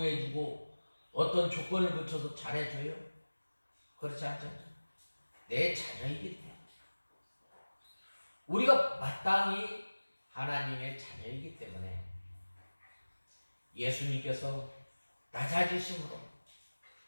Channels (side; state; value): both; inverted; correlation -1.00